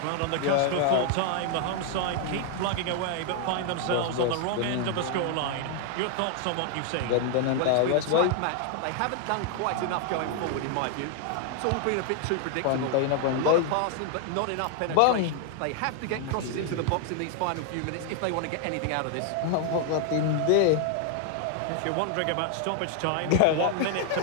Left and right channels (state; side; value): different; both; correlation 0.00